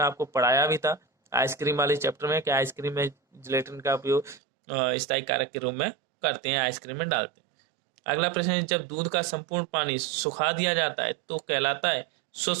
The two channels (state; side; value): drops out; left; at 4.4 s